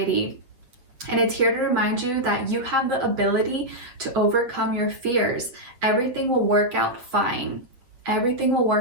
And it's here to remind you that you have the ability to overcome your fears. Everything will work out fine. Everything will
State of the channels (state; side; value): late; left; 8.2 ms